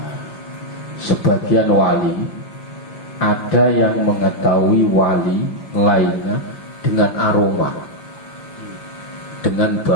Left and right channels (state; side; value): late; right; 5.9 ms